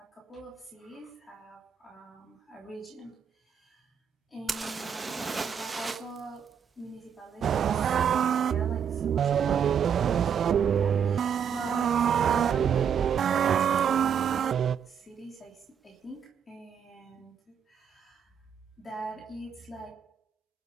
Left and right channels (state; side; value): quieter; left; 7.7 dB